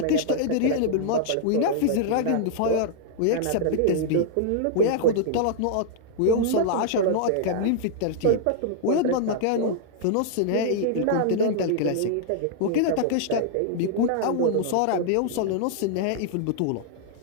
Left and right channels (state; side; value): different; both; correlation -0.01